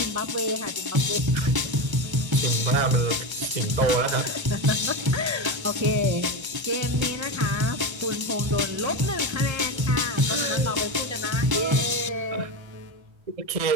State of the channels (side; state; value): left; late; 1.1 ms